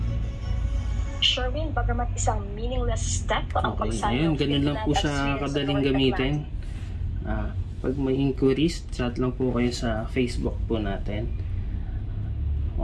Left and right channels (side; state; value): both; identical; correlation 1.00